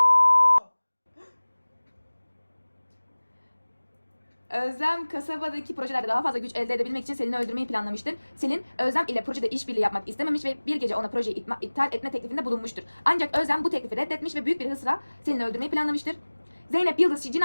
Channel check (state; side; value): inverted; both; correlation -1.00